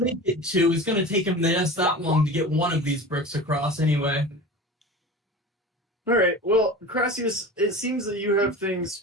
it 2. It's going to take him just that long to get one of these bricks across anyway. All right. Well, Crassius, it seems that you have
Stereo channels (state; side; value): normal; both; correlation 0.34